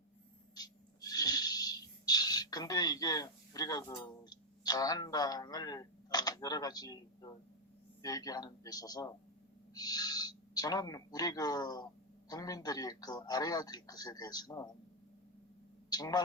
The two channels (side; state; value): both; normal; correlation 0.01